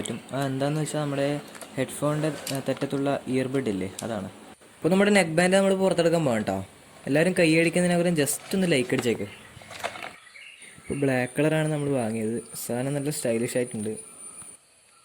എന്താണെന്ന് വെച്ചാൽ നമ്മുടെ ഹെഡ്ഫോണിൻ്റെ തെറ്റത്തുള്ള ഇയർബഡ് ഇല്ലേ, അതാണ്. അപ്പോൾ നമ്മുടെ നെക്ക് ബാൻഡ് നമ്മൾ പുറത്തെടുക്കാൻ പോകാം കേട്ടോ. എല്ലാവരും കൈയടിക്കുന്നതിനകരം ജസ്റ്റ് ഒന്ന് ലൈക്ക് അടിച്ചേക്ക്. ഇപ്പോൾ ബ്ലാക്ക് കളറാണ് നമ്മൾ വാങ്ങിയത്. സാധനം നല്ല സ്റ്റൈലിഷ് ആയിട്ടുണ്ട്.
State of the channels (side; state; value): both; identical; correlation 1.00